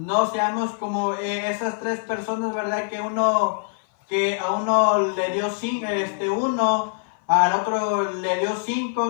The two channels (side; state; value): right; silent; 58 dB below the other